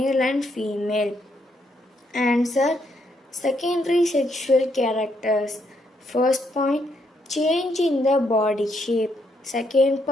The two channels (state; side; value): normal; both; correlation 0.75